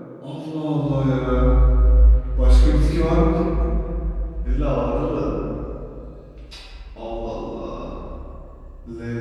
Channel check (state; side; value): identical; both; correlation 1.00